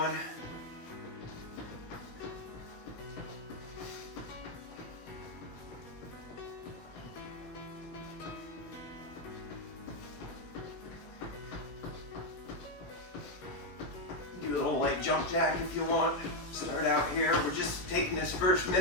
Do a little light jump jack if you want. Start out here. We're just taking this first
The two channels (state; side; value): late; right; 17 ms